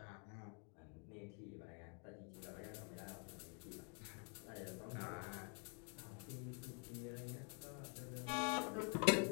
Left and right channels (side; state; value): right; quieter; 39.7 dB